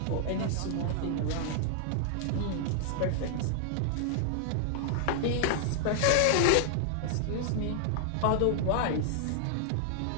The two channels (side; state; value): both; different; correlation -0.01